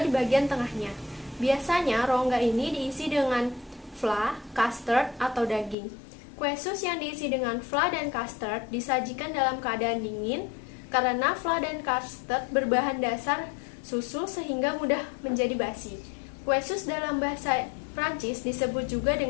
di bagian tengahnya. Biasanya rongga ini diisi dengan fla, custard, atau daging. Kue sus yang diisi dengan fla dan custard disajikan dalam keadaan dingin karena fla dan custard berbahan dasar susu sehingga mudah menjadi basi. Kue sus dalam bahasa Prancis disebut juga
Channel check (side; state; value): right; drops out; at 5.8 s